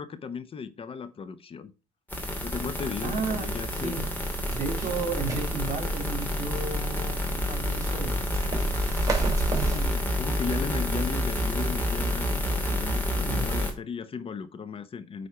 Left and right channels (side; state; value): both; normal; correlation 0.69